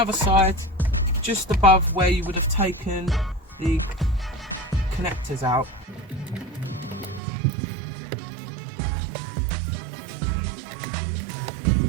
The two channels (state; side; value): drops out; left; at 7.2 s